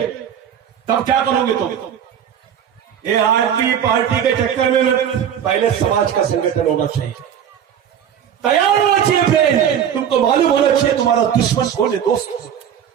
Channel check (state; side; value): quieter; left; 9.0 dB